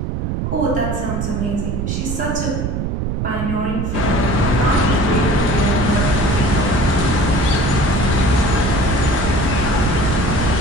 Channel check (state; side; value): noise; right; rumble, 2 dB below the sound